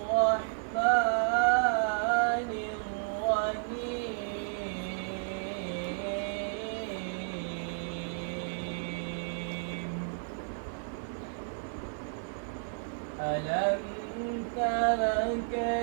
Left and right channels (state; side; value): silent; left; digital silence